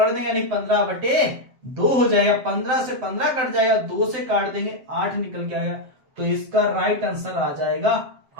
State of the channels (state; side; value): late; left; 7.8 ms